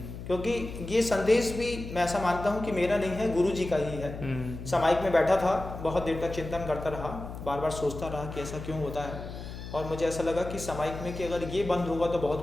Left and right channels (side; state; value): left; noise; hum, 10 dB below the sound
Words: क्योंकि ये संदेश भी मैं ऐसा मानता हूँ कि मेरा नहीं है, गुरु जी का ही है। सामायिक में बैठा था, बहुत देर तक चिंतन करता रहा, बार बार सोचता रहा कि ऐसा क्यों होता है, और मुझे ऐसा लगा कि सामायिक में कि अगर ये बंद होगा तो